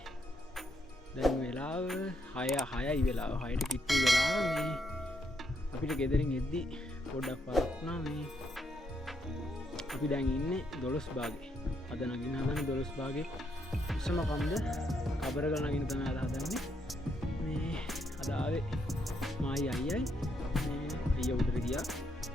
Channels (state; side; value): normal; both; correlation 0.76